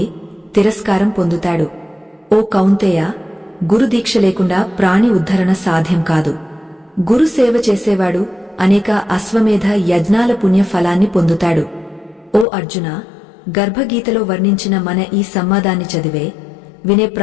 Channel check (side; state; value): right; drops out; at 12.5 s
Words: తిరస్కారం పొందుతాడు. ఓ కౌంతేయ, గురుదీక్ష లేకుండా ప్రాణి ఉద్ధరణ సాధ్యం కాదు. గురు సేవ చేసేవాడు అనేక అశ్వమేధ యజ్ఞాల పుణ్య ఫలాన్ని పొందుతాడు. ఓ అర్జున, గర్భగీతలో వర్ణించిన మన ఈ సంవాదాన్ని చదివే, వినే